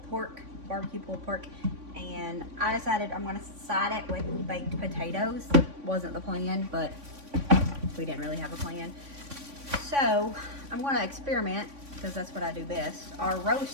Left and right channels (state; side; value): late; left; 3.5 ms